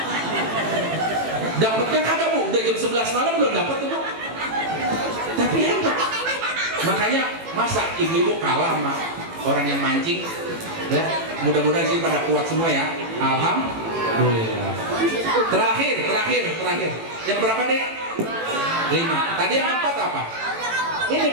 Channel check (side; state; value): left; late; 18 ms